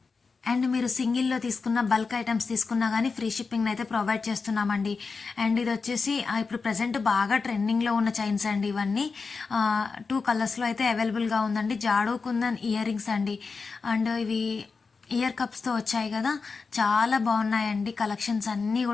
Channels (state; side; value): quieter; right; 4.7 dB